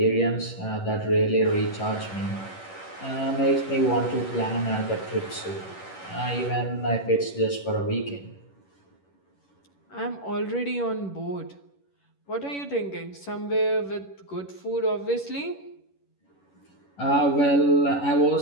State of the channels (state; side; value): late; right; 11 ms